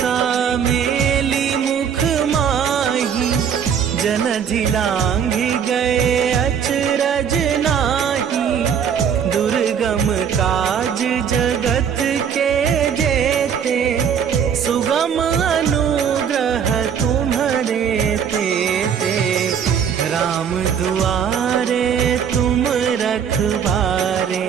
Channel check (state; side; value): quieter; left; 7.7 dB